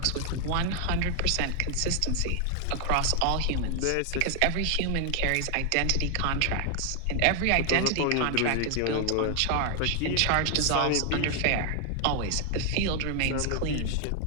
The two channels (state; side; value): different; both; correlation 0.00